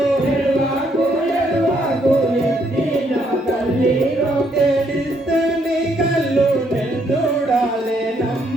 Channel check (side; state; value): both; normal; correlation 0.72